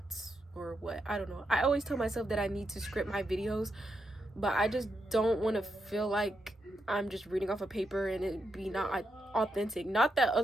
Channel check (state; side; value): normal; both; correlation 0.83